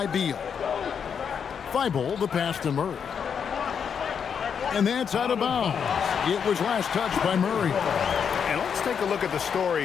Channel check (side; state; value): right; quieter; 7.1 dB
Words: Beal. Thibault, the pass to Murray. And that's out of bounds. It was last touched by Murray. And let's take a look at the